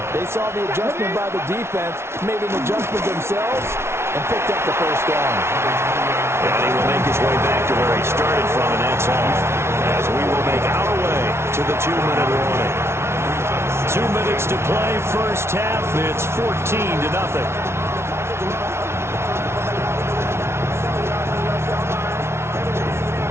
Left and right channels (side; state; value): left; late; 0.12 ms